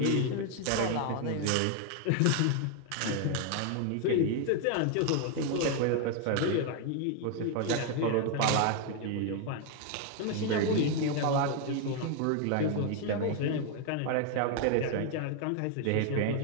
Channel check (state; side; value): different; both; correlation 0.00